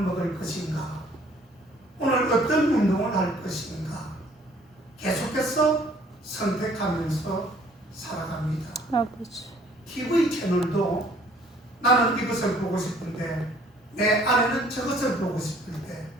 먹을 것인가, 오늘 어떤 운동을 할 것인가, 계속해서 선택하면서 살아갑니다. 아버지. TV 채널도 나는 이것을 보고 싶은데 내 아내는 저것을 보고 싶을 때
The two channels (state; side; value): normal; both; correlation 0.58